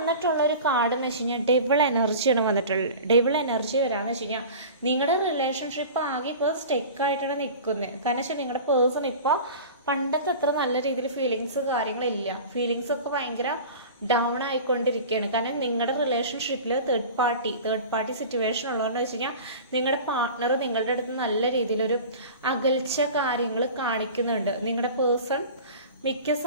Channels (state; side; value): inverted; both; correlation -0.37